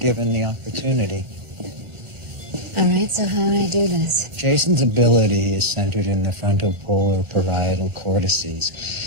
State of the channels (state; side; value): late; left; 1.4 ms